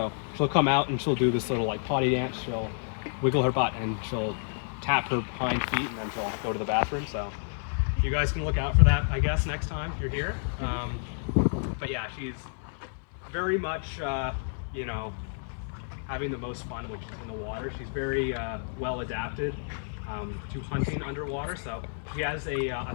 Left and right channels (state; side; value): silent; right; digital silence